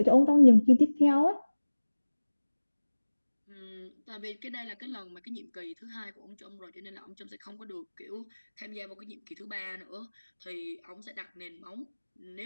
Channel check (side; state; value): both; inverted; correlation -1.00